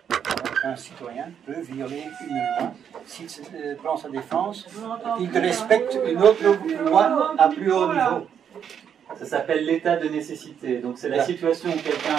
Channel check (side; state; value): left; quieter; 8.2 dB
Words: qu'un citoyen peut violer une loi s'il prend sa défense, qu'il respecte une autre loi à plus haut niveau. Ça s'appelle l'état de nécessité. Donc c'est la situation où